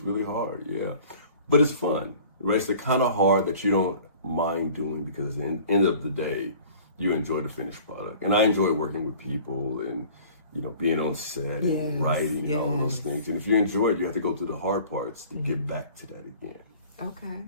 really hard, yeah. But it's fun, right? It's the kind of hard that you don't mind doing, because at the end of the day, you enjoy the finished product. And I enjoy working with people and, you know, being on set and writing and all those things. And if you enjoy it, you have to go through the hard parts to get back to that again. Okay.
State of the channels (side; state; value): both; inverted; correlation -0.48